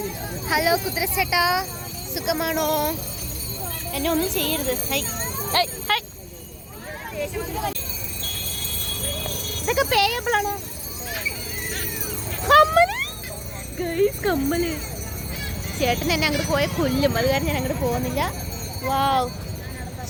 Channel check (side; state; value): both; identical; correlation 1.00